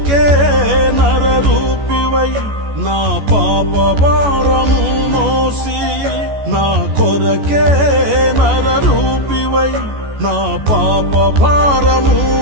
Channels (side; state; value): left; late; 14 ms